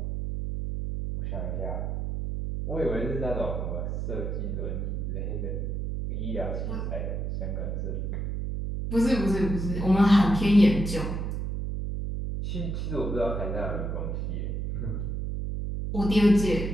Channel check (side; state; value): right; noise; hum, 2 dB below the sound